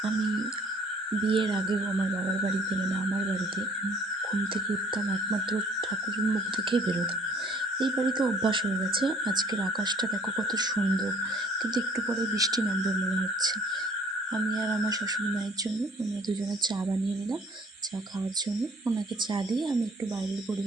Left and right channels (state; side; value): normal; both; correlation 0.56